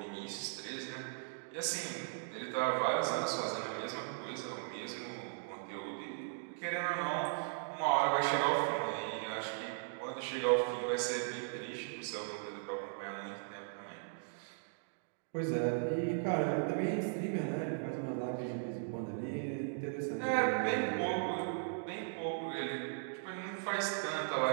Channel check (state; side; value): silent; left; digital silence